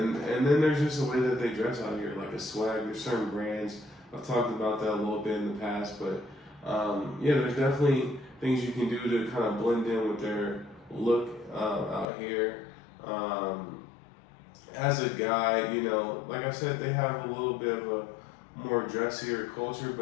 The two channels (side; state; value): right; drops out; at 12.1 s